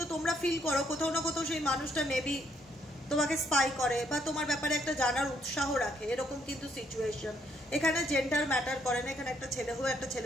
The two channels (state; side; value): normal; both; correlation 0.71